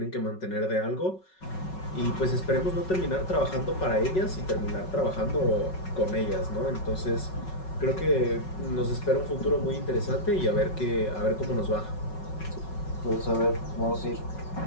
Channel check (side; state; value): right; late; 5.4 ms